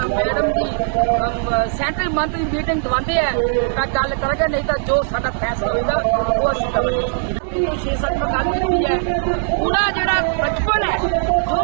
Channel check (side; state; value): left; silent; digital silence